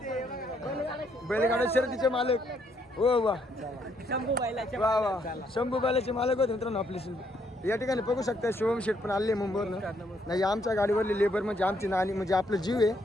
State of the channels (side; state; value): both; normal; correlation 0.72